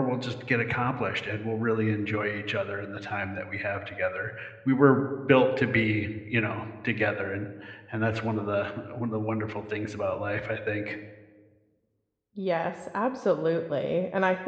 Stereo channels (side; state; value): both; identical; correlation 1.00